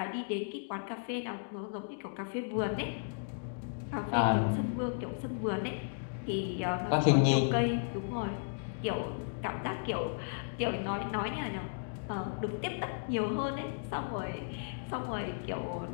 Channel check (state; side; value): silent; right; digital silence